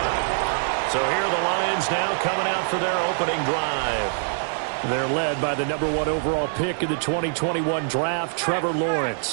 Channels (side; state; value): left; silent; 63 dB below the other